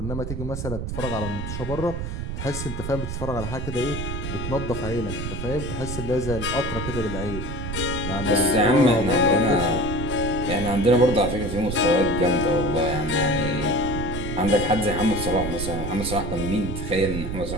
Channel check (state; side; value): noise; right; rumble, 5 dB below the sound